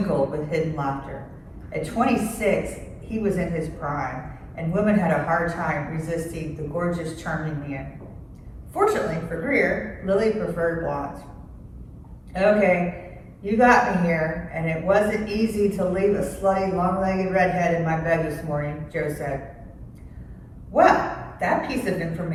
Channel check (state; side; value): identical; both; correlation 1.00